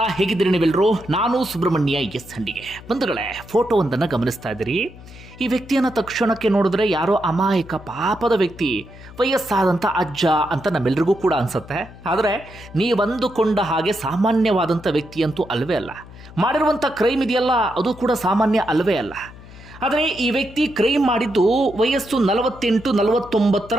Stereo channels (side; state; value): left; noise; hum, 18 dB below the sound